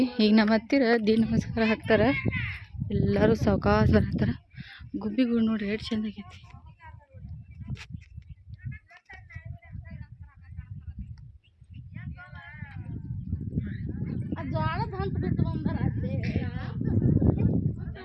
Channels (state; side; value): identical; both; correlation 1.00